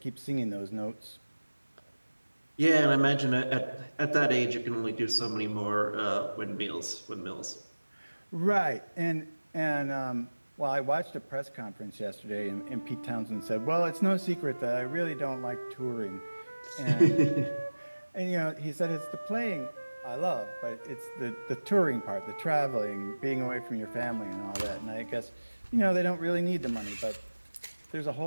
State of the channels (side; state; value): both; inverted; correlation -1.00